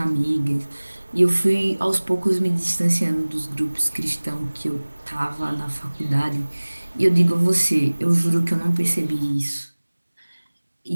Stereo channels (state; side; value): inverted; both; correlation -1.00